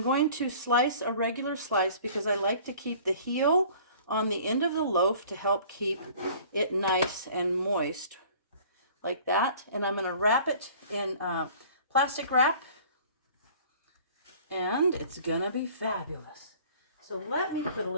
to slice a regular slice because I like to keep the heel on the end of the loaf to help keep it nice and moist like that. And I'm going to wrap it in plastic wrap, and it's going to be fabulous. So let me put a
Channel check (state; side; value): inverted; both; correlation -0.50